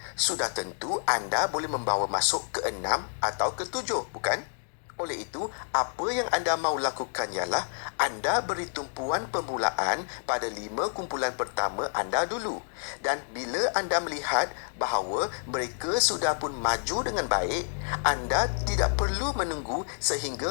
sudah tentu anda boleh membawa masuk ke 6 atau ke 7, bukan? Oleh itu, apa yang anda mahu lakukan ialah anda beri tumpuan permulaan pada 5 kumpulan pertama anda dulu. Dan bila anda melihat bahawa mereka sudah pun maju dengan baik, anda tidak perlu menunggu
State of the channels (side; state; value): right; silent; 59 dB below the other